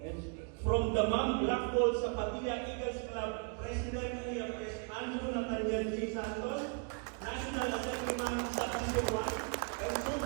And from the Mam Black Hole sa Patila Eagles Club, President Kuya Pres Andrew Nathaniel J. Santos, National Assemblyman Subdisi Ruan, and soon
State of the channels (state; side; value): quieter; left; 37.4 dB